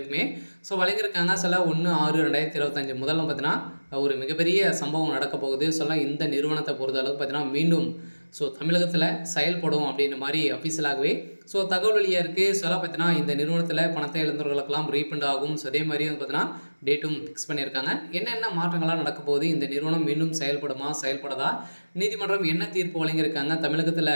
வழங்கியிருக்காங்க. 1/6/2025 முதல்ல பார்த்தீங்கன்னா ஒரு மிகப்பெரிய சம்பவம் நடக்க போகுது. இந்த நிறுவனத்தை பொறுத்த அளவுக்கு பார்த்தீங்கன்னா மீண்டும் தமிழகத்தில் செயல்படும் அப்படின்ற மாதிரி அஃபீஷியலாகவே தகவல் வெளியாக இருக்குது. பார்த்தீங்கன்னா இந்த நிறுவனத்தில் பணத்தை இழந்தவர்களுக்கெல்லாம் ரீஃபண்ட் ஆகும். அதே மாதிரி பார்த்தீங்கன்னா டேட்டும் ஃபிக்ஸ் பண்ணியிருக்காங்க. என்னென்ன மாற்றங்கள்லாம் நடக்க போகுது, இந்த நிறுவனம் மீண்டும் செயல்படுமா செயல்படாதா, நீதிமன்றம் என்ன தீர்ப்பு வழங்கியிருக்காங்க, தமிழகத்தில்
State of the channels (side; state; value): both; inverted; correlation -1.00